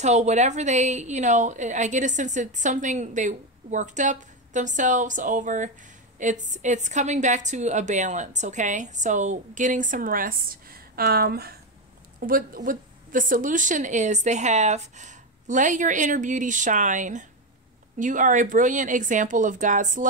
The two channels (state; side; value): normal; both; correlation 0.11